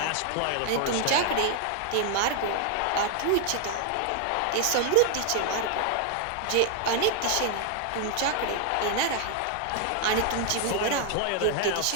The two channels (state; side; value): different; both; correlation 0.00